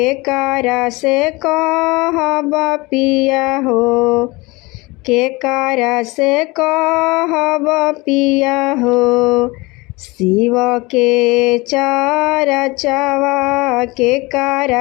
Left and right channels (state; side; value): quieter; right; 23.9 dB